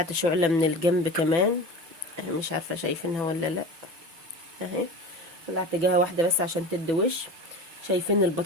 شعله من الجنب كمان، مش عارفه شايفينها ولا لا اهي. ولعت جهه واحده بس عشان تدي وش. شايفين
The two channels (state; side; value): late; left; 6.0 ms